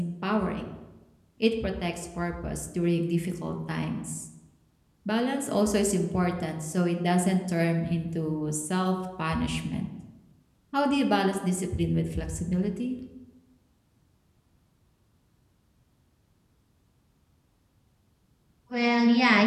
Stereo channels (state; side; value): identical; both; correlation 1.00